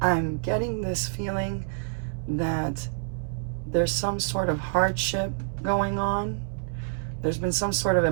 I'm getting this feeling that there's some sort of hardship going on. There's been some sort of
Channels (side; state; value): left; silent; 60 dB below the other